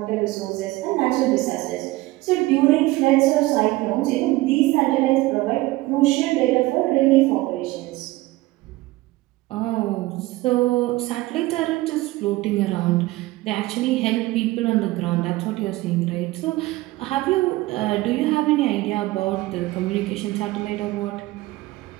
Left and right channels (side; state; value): left; quieter; 19.2 dB